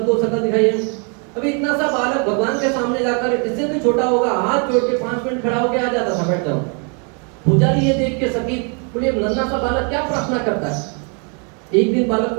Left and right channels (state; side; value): quieter; left; 37.5 dB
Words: शकल दिखाइए। अभी इतना सा बालक भगवान के सामने जाकर, इससे भी छोटा होगा, हाथ जोड़ के 5 मिनट खड़ा होके आ जाता था, बैठ जाओ। पुजारी ये देख के सकी, बोले नन्हा सा बालक क्या प्रार्थना करता है? एक दिन बालक